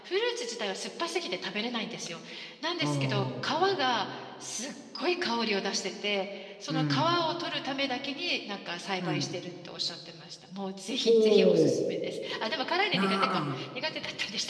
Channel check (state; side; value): identical; both; correlation 1.00